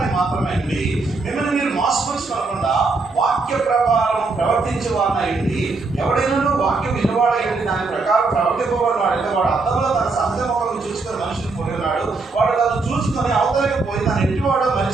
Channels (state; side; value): quieter; left; 3.9 dB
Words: మాత్రమే అండి. మిమ్మల్ని మీరు మోసపరుచుకోకుండా వాక్య ప్రకారం ప్రవర్తించే వారినైంది. ఎవడైనా వాక్యం వినవాడైంది దాని ప్రకారం ప్రవర్తింపబడిన వాడైతే వాడు అర్థంలో తన సహజ మొక్కలను చూసుకొని మనిషిని పోయినాడు. వాడు తను చూసుకొని అవతలకి పోయి తను ఎట్టివాడో